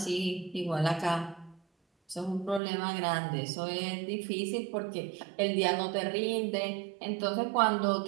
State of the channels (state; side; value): drops out; left; at 2.6 s